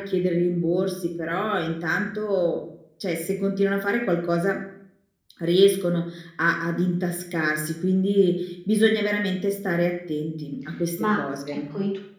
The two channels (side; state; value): both; identical; correlation 1.00